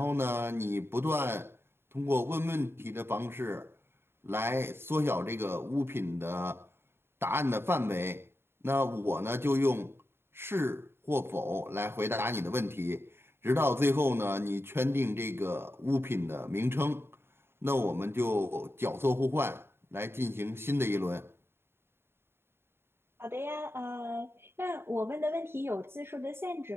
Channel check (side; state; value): left; late; 0.11 ms